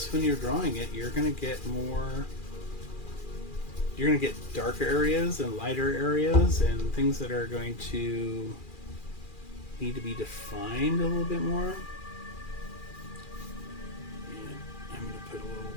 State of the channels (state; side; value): late; right; 2.4 ms